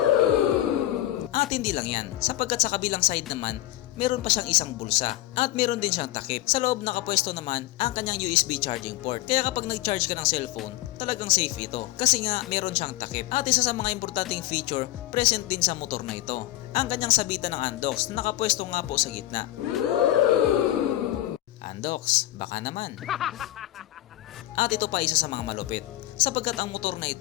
At hindi lang yan, sapagkat sa kabilang side naman, meron pa siyang isang bulsa at meron din siyang takip. Sa loob nakapwesto naman ang kanyang USB charging port. Kaya kapag nag-charge ka ng cellphone, talagang safe ito kasi nga meron siyang takip. At isa sa mga importanteng feature present din sa motor na ito, ang kanyang sabitan ng Andox na nakapwesto nga po sa gitna. Andox, baka naman. At ito pa isa sa mga malupit, sapagkat ang motor na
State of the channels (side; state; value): right; quieter; 15.5 dB